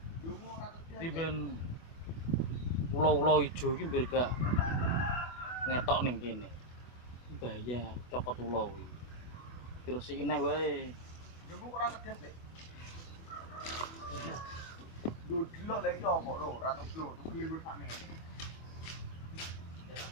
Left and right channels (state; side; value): late; right; 24 ms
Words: Dungu ora kerja. Riben pulau-pulau ijo iki mbir gak ngetok ning kene. Bahaya cokot ulo iki. Dirusiki neh wae. Dungu ora kerja, Le. Lho delok lek iki opo lho, ora tuglo, tuglo iku sakmene.